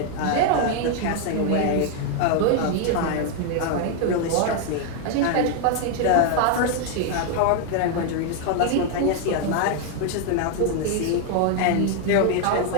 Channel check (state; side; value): different; both; correlation 0.00